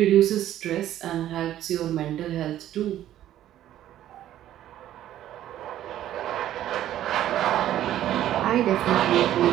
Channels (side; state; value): left; quieter; 12.4 dB